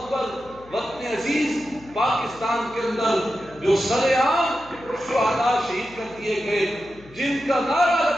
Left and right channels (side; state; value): left; noise; hum, 23 dB below the sound